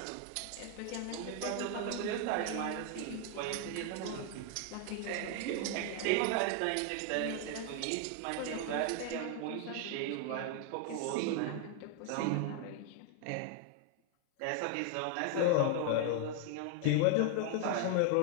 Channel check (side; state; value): both; different; correlation 0.00